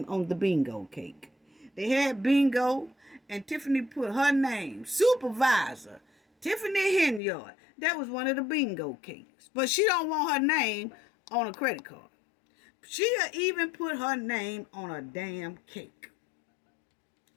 on the bingo cake. They had bingo, and Tiffany put her name, supervisor, Tiffany Henyard. That was one of the bingo cakes. But she don't want her name on a credit card. She'll even put her name on a damn cake.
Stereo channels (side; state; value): right; drops out; at 7.2 s